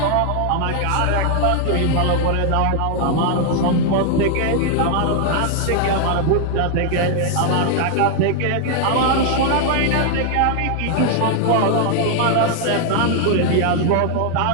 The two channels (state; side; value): different; both; correlation 0.00